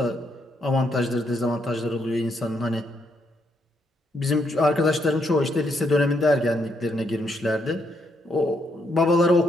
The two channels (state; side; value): normal; both; correlation 0.76